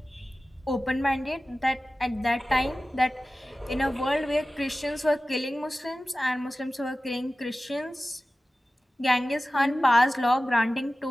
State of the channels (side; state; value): both; normal; correlation 0.96